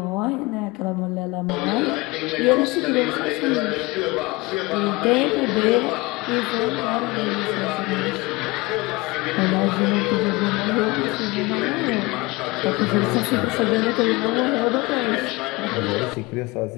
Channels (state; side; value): quieter; right; 23.2 dB